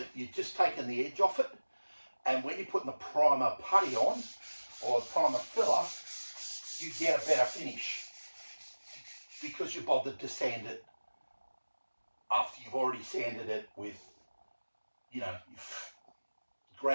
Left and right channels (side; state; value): both; inverted; correlation -1.00